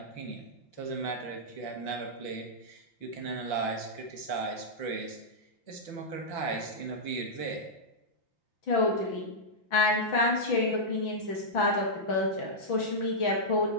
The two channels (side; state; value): right; late; 5.8 ms